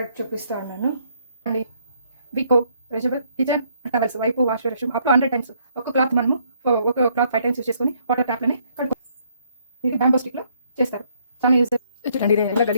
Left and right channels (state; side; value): inverted; both; correlation -0.68